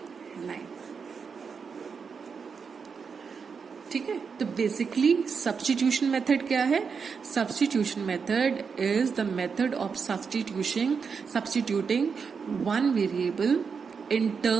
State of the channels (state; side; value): quieter; left; 5.8 dB